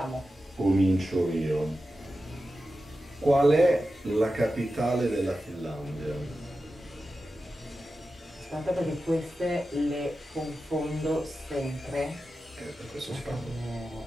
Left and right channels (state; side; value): normal; both; correlation 0.92